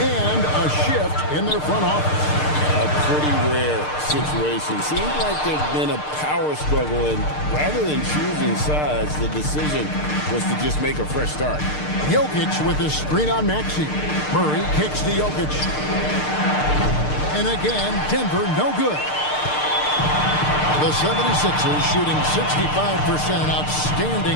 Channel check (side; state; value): right; late; 6.6 ms